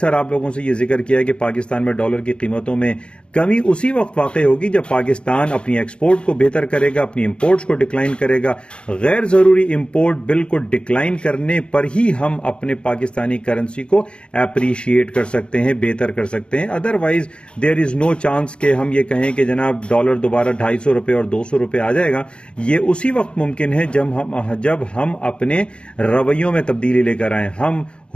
आप लोगों से ये जिक्र किया है कि पाकिस्तान में डॉलर की कीमतों में कमी उसी वक्त वाक़ई होगी जब पाकिस्तान अपनी एक्सपोर्ट को बेहतर करेगा, अपनी इंपोर्ट्स को डिक्लाइन करेगा। गैर ज़रूरी इंपोर्ट बिल को डिक्लाइन करने पर ही हम अपने पाकिस्तानी करेंसी को अप्रिशिएट कर सकते हैं, बेहतर कर सकते हैं। Otherwise there is no chance कि हम ये कहें कि जनाब डॉलर दोबारा ₹250 और ₹200 आ जाएगा। ये उसी वक्त मुमकिन है जब हम अपने रवैयों में तब्दीली लेकर आएँ। हम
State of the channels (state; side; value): late; right; 0.057 ms